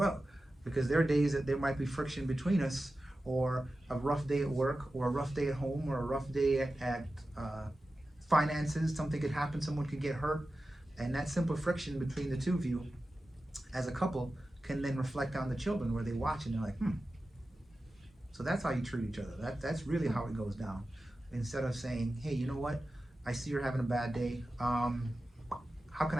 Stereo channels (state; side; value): normal; both; correlation 0.94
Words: because there are days that there might be friction between us, or a rough day at work, or a rough day at home, or a rough day at finances. Something could happen, someone could get hurt, and that simple friction between the two of you as a couple can then reflect on the children, where they watch and they're like, so that's how you treat each other. That's really how it goes down. Instead of saying, hey, you know what, I see you're having a bad day, how can